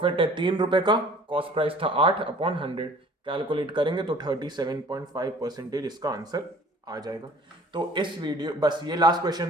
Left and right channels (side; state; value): both; normal; correlation 0.50